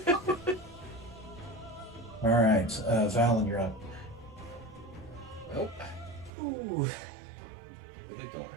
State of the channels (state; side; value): drops out; left; at 6.3 s